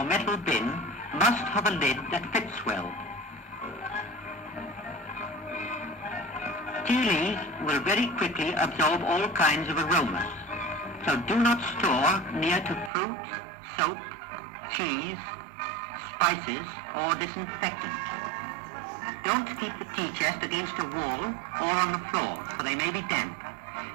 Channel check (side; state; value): left; drops out; at 12.9 s